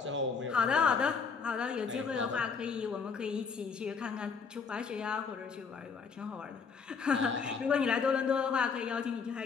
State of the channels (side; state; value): right; quieter; 5.6 dB